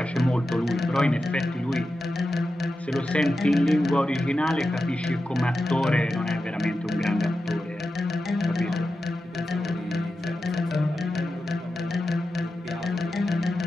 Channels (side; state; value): both; normal; correlation 0.91